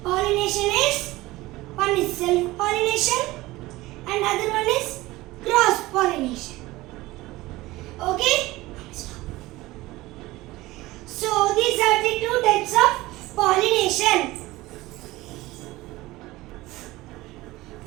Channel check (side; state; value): left; quieter; 19.0 dB